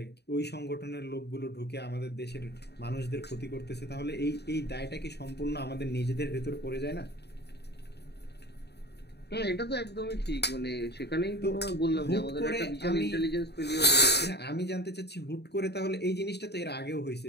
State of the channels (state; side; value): late; right; 0.48 ms